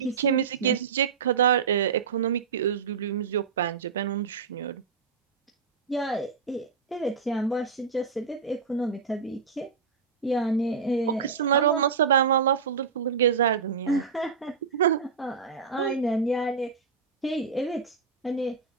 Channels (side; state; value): left; quieter; 5.8 dB